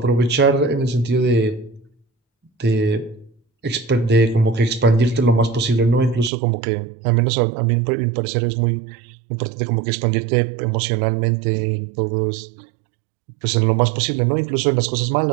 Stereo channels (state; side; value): drops out; left; at 6.3 s